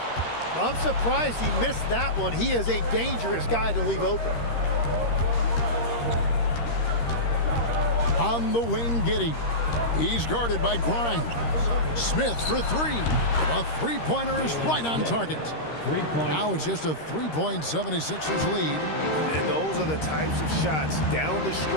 I'm surprised he missed that one. He is a dangerous guy to leave open. On the wing, Giddey. He's guarded by Grimes. Smith for 3. A three-pointer is right on target. Now it's just a 3-point 76ers lead. And those are the types of shots down the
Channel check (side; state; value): right; late; 13 ms